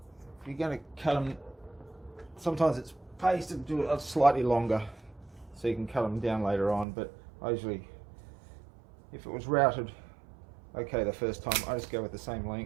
you're going to cut them, sometimes it's best to do it slightly longer so you can cut them down later on, but I usually, if it was routed okay the first time, I just go with the same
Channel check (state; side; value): drops out; left; at 6.9 s